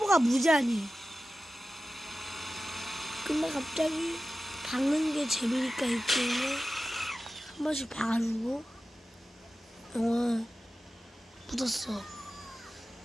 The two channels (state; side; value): normal; both; correlation 0.94